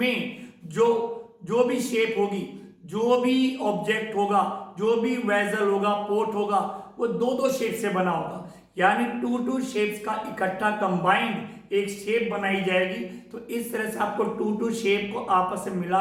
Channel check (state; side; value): identical; both; correlation 1.00